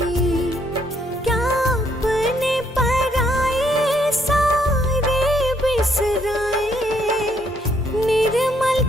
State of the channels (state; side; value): normal; both; correlation 0.70